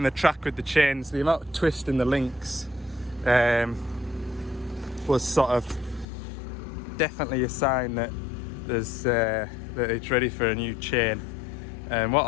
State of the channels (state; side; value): drops out; right; at 6.1 s